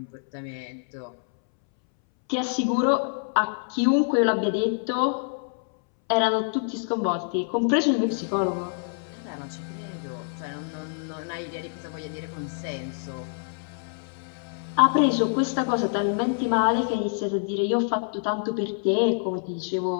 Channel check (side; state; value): right; silent; 61 dB below the other